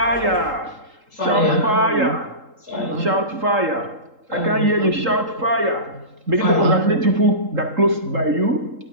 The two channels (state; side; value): late; left; 3.8 ms